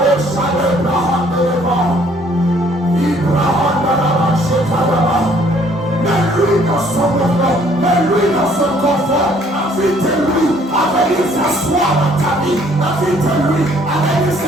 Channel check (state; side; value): normal; both; correlation 0.61